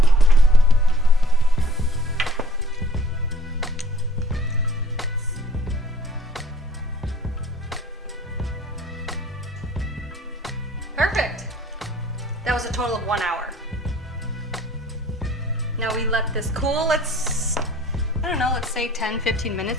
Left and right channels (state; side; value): normal; both; correlation 0.56